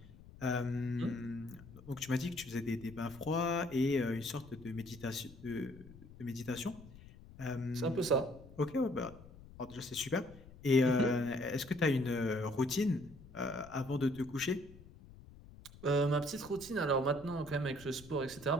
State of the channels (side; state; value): left; noise; rumble, 19 dB below the sound